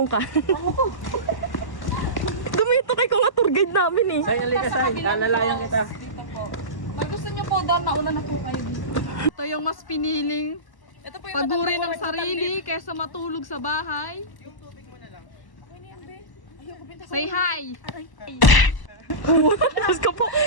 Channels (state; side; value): late; right; 1.0 ms